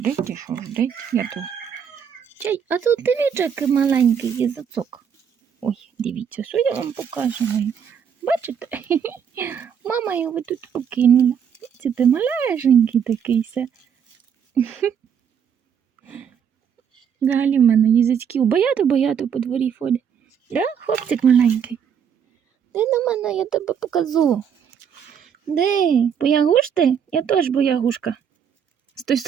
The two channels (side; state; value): left; quieter; 7.7 dB